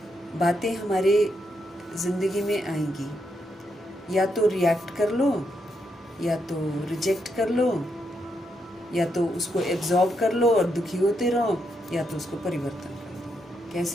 बातें हमारे जिंदगी में आएंगी, या तो रिएक्ट कर लो, या तो रिजेक्ट कर लो, या तो उसको एब्जॉर्ब कर लो और दुखी होते रहो, या तो उसको परिवर्तन कर दो।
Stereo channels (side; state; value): both; normal; correlation 0.80